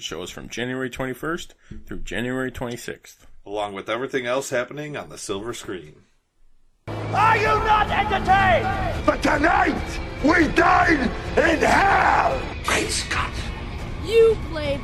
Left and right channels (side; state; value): both; identical; correlation 1.00